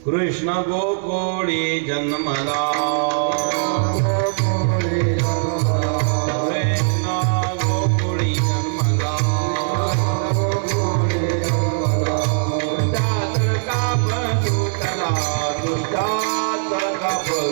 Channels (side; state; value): left; silent; digital silence